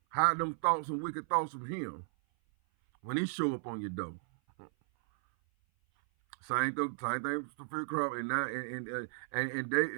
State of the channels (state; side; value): silent; left; 55 dB below the other